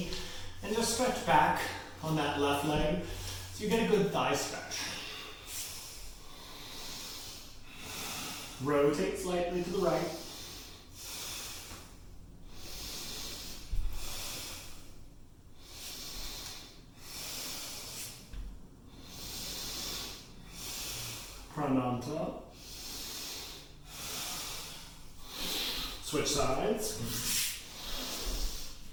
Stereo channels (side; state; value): both; identical; correlation 1.00